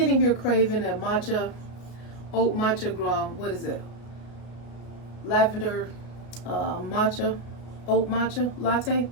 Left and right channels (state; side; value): late; right; 33 ms